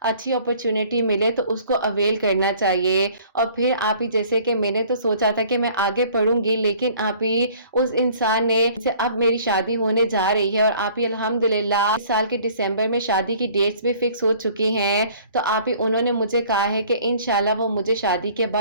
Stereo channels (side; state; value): both; inverted; correlation -0.54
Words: اچھی اپرچونٹی ملے تو اس کو اویل کرنا چاہیے، اور پھر آپ ہی جیسے کہ میں نے تو سوچا تھا کہ میں آگے پڑھوں گی، لیکن آپ ہی اس انسان نے اب میری شادی ہونے جا رہی ہے، اور آپ ہی الحمدللہ اس سال کے دسمبر میں شادی کی ڈیٹس بھی فکس ہو چکی ہیں، تو آپ ہی انہوں نے مجھے کہا ہے کہ انشاءاللہ وہ مجھے شادی کے